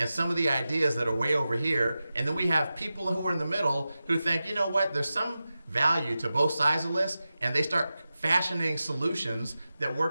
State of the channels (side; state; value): both; inverted; correlation -0.93